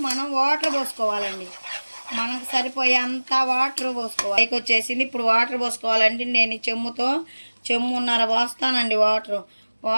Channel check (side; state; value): both; inverted; correlation -1.00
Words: మనం వాటర్ పోసుకోవాలండి, మనకు సరిపోయే అంత వాటర్ పోసుకోవాలి. పైకి వచ్చేసింది. ఇప్పుడు వాటర్ పోసుకోవాలండి. నేను ఈ చెమ్మున్నర పోస్తానండి